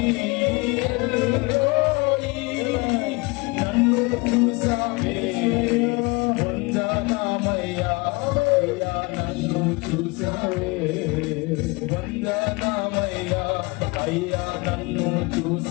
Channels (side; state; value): right; quieter; 26.3 dB